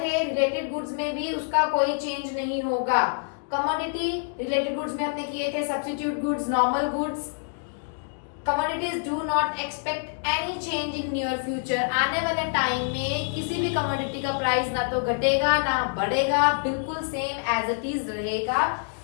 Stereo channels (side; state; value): right; silent; 61 dB below the other